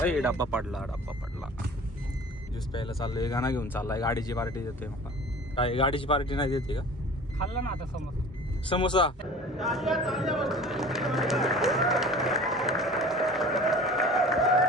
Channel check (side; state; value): both; normal; correlation 0.42